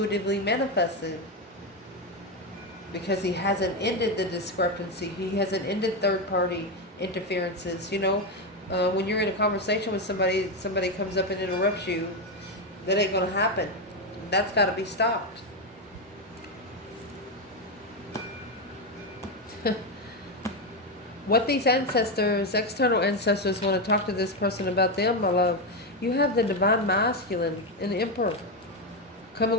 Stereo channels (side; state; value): both; normal; correlation 0.09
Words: manifested, because he hasn't ended the discrepancy. He hasn't ended third party interferences. You know, when you're in a conversation with somebody comes up and interrupts you, that ain't going to happen. That's got to be stopped. What these ancestors, external ancestors, want to talk to this person about them, my love. You have the divine masculine and the Emperor coming